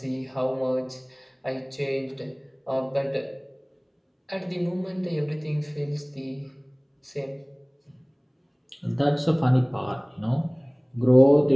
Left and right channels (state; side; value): identical; both; correlation 1.00